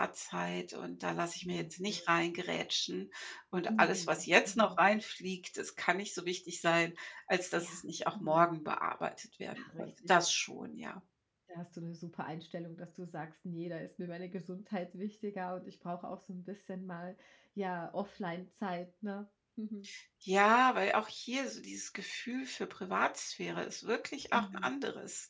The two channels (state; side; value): identical; both; correlation 1.00